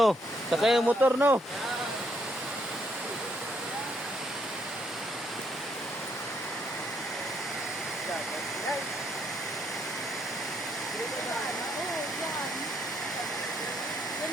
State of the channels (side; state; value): both; normal; correlation 0.72